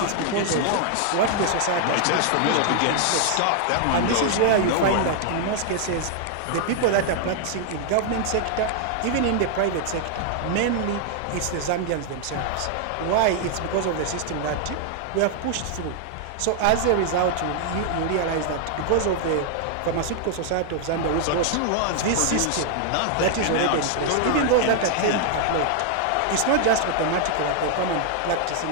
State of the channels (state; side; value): different; both; correlation 0.00